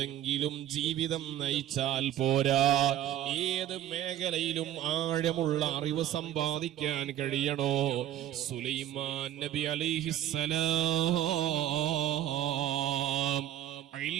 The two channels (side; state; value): left; quieter; 12.0 dB